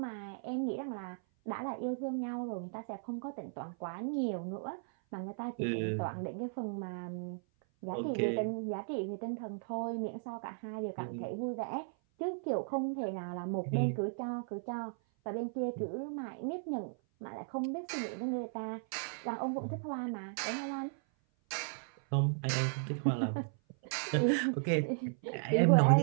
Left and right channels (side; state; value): left; silent; 54 dB below the other